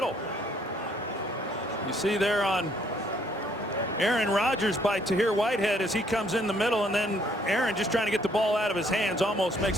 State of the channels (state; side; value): normal; both; correlation 0.66